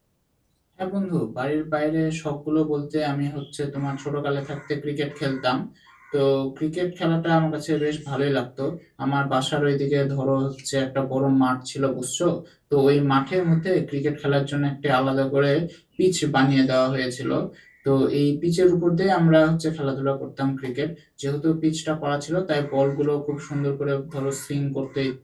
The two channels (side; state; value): both; identical; correlation 1.00